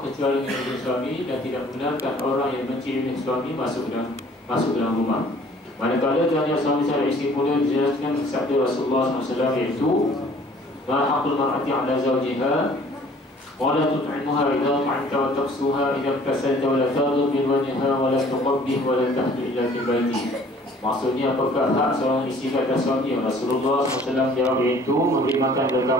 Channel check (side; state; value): both; normal; correlation 0.54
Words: kecuali dengan izin suami, dan tidak benarkan orang yang benci dengan suami masuk dalam rumah. Manakala tanya suami terhadap isteri pula dijelaskan sabda Rasulullah SAW, iaitu ma haqqul mar'ati 'ala zawjiha wa la tut'imuha idza ta'amta wa taqsuha idza kasalta wa la taghdab min wajhiha wa la tuqabbih wa la tahdu illa fi baiti. Maksudnya apakah hak seorang isteri ke atas suami? Rasulullah SAW jawab, iaitu memberi makan kepada